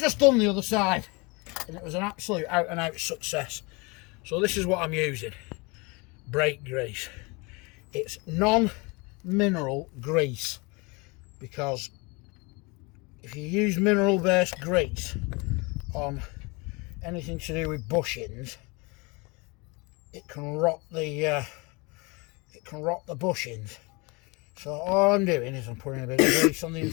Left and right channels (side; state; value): right; quieter; 27.9 dB